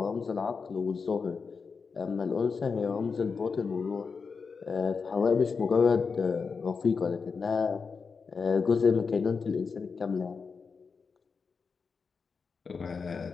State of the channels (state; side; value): quieter; right; 5.2 dB